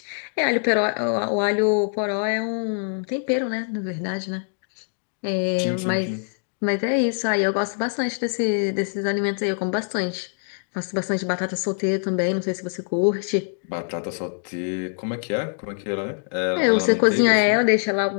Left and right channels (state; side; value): silent; right; digital silence